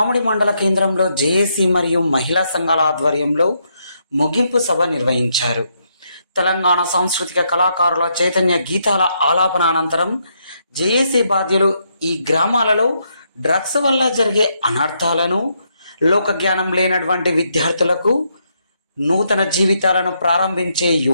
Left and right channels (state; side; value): inverted; both; correlation -0.77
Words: మండల కేంద్రంలో జేఏసీ మరియు మహిళా సంఘాల ఆధ్వర్యంలో ముగింపు సభ నిర్వహించారు. తెలంగాణ సాంస్కృతిక కళాకారుల చైతన్య గీతాల ఆలాపన అనంతరం జేఏసీ బాధ్యులు ఈ గ్రామాలలో డ్రగ్స్ వల్ల జరిగే అనర్థాలను, లోకజ్ఞానం లేనటువంటి విద్యార్థులకు నూతన జీవితాలను ప్రారంభించే